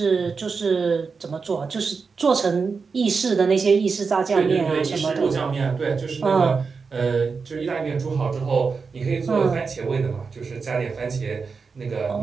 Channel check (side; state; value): left; quieter; 5.0 dB